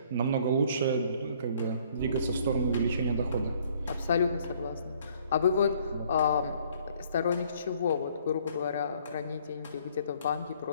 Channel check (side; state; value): both; inverted; correlation -0.61